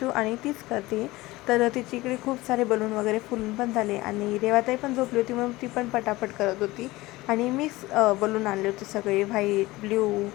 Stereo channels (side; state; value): right; quieter; 19.5 dB